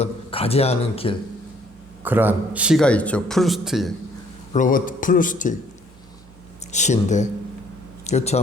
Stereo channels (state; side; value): normal; both; correlation 0.62